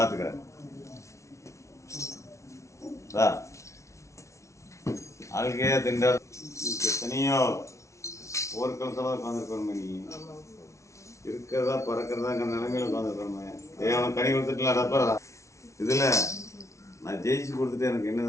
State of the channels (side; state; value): right; late; 0.14 ms